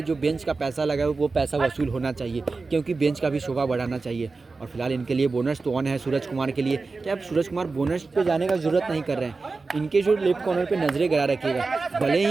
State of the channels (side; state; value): left; quieter; 4.0 dB